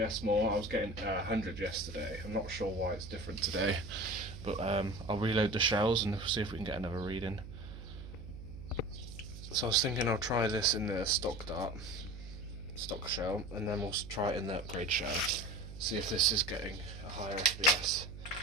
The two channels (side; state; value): right; noise; hum, 12 dB below the sound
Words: more. I was getting 100 yesterday. I'm not sure why it's different today, but I'll reload the shells and see if we can get another reading. So I was thinking I'll try this in the stock dart, stock shell, and then we'll try it in the upgrade shell. See if this is getting a higher FPS